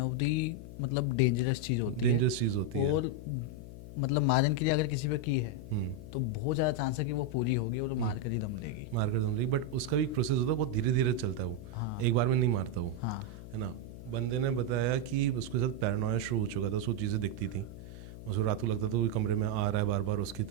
ऑफ दी मतलब डेंजरस चीज़ होती है। डेंजरस चीज़ होती है। और मतलब मारन क्रिया अगर किसी पे की है तो बहुत ज़्यादा चांस है कि वो पूरी होगी और मार कर ही दम लेगी। मार कर दम लेगी, बट उसका भी एक प्रोसेस होता है, बहुत धीरे धीरे चलता है वो। हाँ। एक बार में नहीं मारता वो। हाँ। है ना। बंदे ने बताया कि उसके साथ पैरानोया शुरू हो चुका था, उसको चीज़ें दिखती थी, उसको रात को लगता था वो कमरे में आ रहा है, बार बार उसकी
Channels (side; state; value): left; noise; hum, 13 dB below the sound